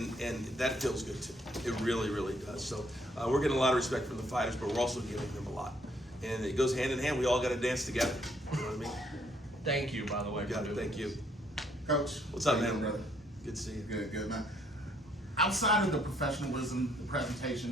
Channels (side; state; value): both; normal; correlation 0.68